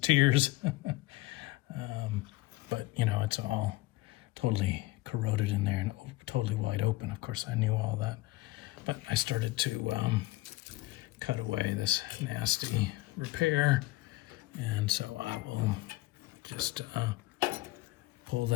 tears. But it's all totally corroded in there and totally wide open. Of course, I knew all that. But I started to cut away this nasty repair. And so I will just pull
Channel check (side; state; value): right; quieter; 19.2 dB